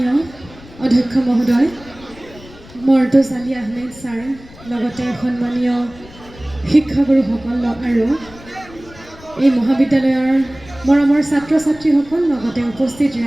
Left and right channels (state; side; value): noise; left; rumble, 21 dB below the sound